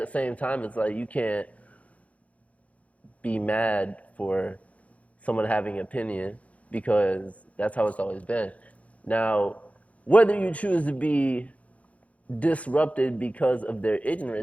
same time, it's like you can't be mad for someone having an opinion because that's how it's always been. Now, whether you choose to be disrupted because of their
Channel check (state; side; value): late; right; 0.066 ms